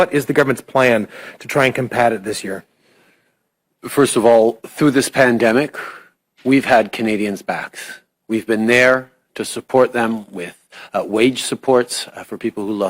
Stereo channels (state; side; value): identical; both; correlation 1.00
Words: is the government's plan to try and combat it this year? First of all, through this pandemic, we've had Canadians' backs. We've been there to support them with wage supports for people who